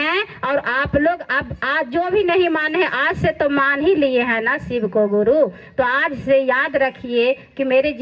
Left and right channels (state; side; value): identical; both; correlation 1.00